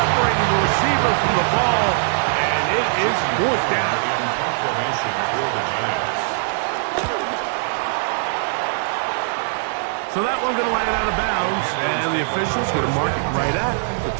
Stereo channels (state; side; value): silent; left; digital silence